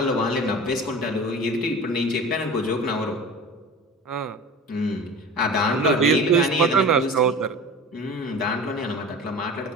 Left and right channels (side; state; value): both; normal; correlation 0.36